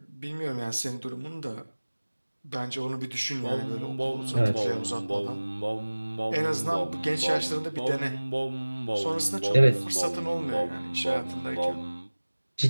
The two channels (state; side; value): inverted; both; correlation -1.00